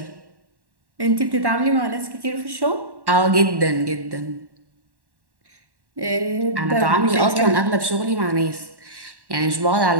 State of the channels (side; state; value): left; late; 1.1 ms